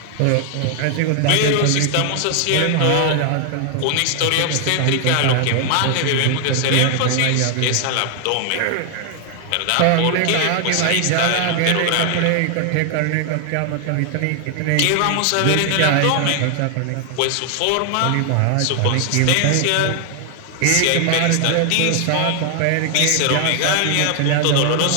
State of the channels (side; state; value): both; different; correlation 0.00